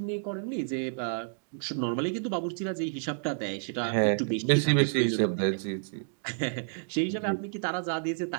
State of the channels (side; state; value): left; silent; digital silence